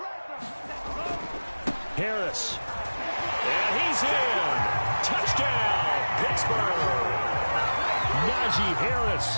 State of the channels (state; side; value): inverted; both; correlation -1.00